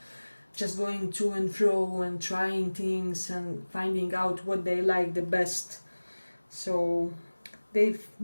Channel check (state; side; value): inverted; both; correlation -1.00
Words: just going to and fro and trying things and finding out what they like the best. So they